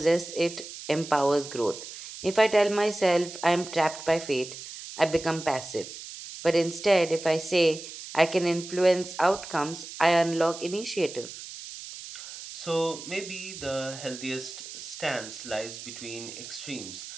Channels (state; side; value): noise; right; hiss, 12 dB below the sound